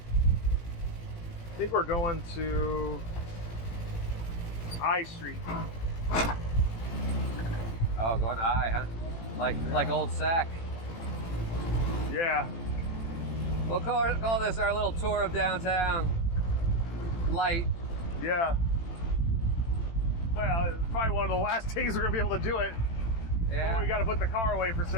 think we're going to I Street. Oh, going to I, huh? Like old Sac. Yeah. We'll call this our little tour of downtown. Light. Yeah. Well, it's probably one of the last days we're gonna be able to do it. Yeah. Or we got to put the car away for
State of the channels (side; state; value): right; late; 18 ms